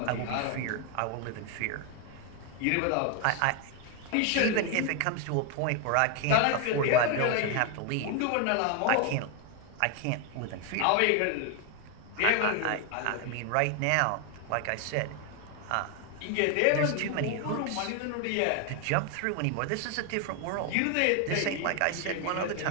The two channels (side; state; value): both; different; correlation 0.01